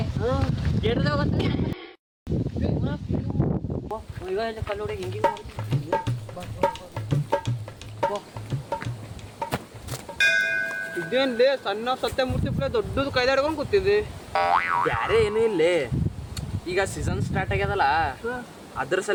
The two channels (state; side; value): identical; both; correlation 1.00